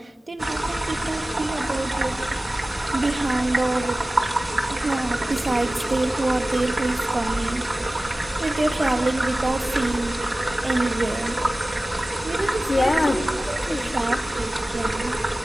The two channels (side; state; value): both; normal; correlation 0.97